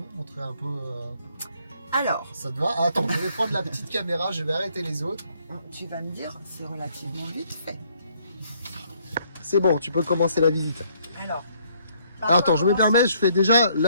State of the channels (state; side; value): inverted; both; correlation -0.67